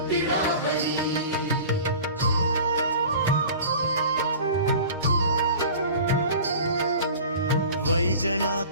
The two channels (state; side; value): inverted; both; correlation -0.40